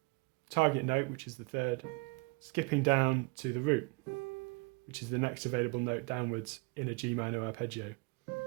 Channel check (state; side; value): quieter; left; 31.0 dB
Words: target note, which is the third, skipping down to the root, which is the next available note downwards in a G minor arpeggio.